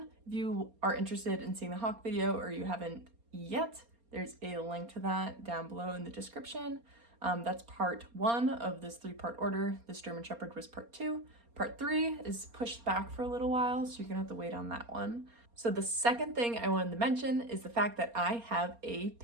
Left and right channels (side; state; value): left; late; 4.3 ms